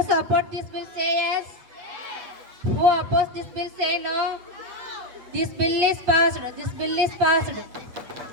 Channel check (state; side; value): late; left; 8.7 ms